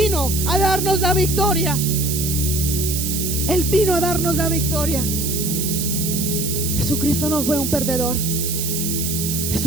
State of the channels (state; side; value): noise; right; hiss, 2 dB below the sound